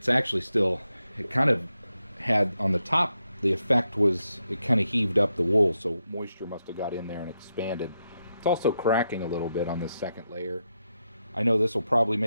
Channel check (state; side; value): inverted; both; correlation -0.85